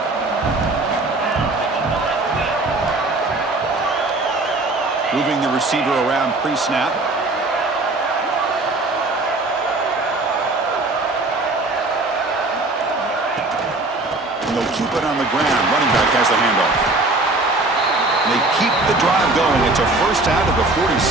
Moving the receiver around pre-snap. And they'll keep it on the ground. Running back has the handoff. They keep the drive going. It's a first out of the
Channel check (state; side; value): quieter; left; 3.0 dB